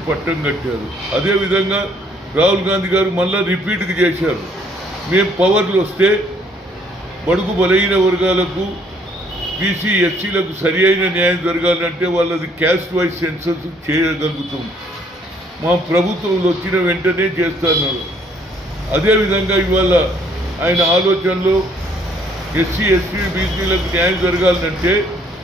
పట్టం కట్టారు. అదేవిధంగా రాహుల్ గాంధీ గారు మళ్ళా రిపీట్కి చేశారు. మేము పవర్లు వస్తే బడుగు బలహీన వర్గాలకు బీసీ ఎస్సీలకు సరి అయిన న్యాయం జరగాలంటే వాళ్ళది క్యాస్ట్ వైజ్ సెన్సస్ చేయగలుగుతాం. మా ప్రభుత్వంలో వచ్చిన వెంటనే చేస్తున్నారు. అదేవిధంగా ఇవాళ ఆయన ఆలోచనలో ఎస్సీ ఎస్టీ బీసీలకు న్యాయం జరగాలంటే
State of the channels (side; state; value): both; normal; correlation 0.64